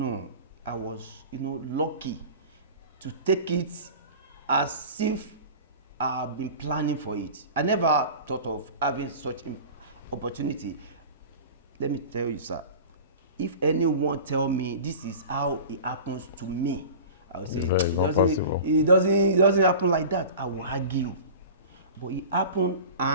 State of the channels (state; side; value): inverted; both; correlation -0.36